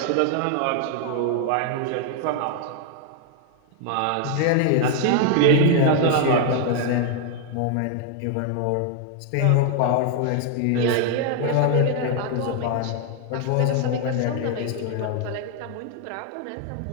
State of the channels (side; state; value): both; different; correlation 0.00